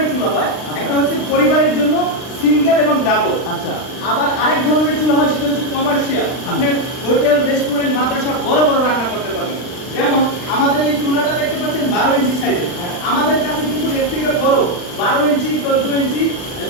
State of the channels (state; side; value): late; right; 39 ms